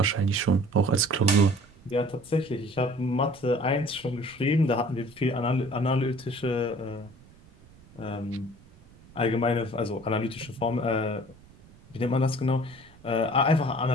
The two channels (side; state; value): right; noise; rumble, 25 dB below the sound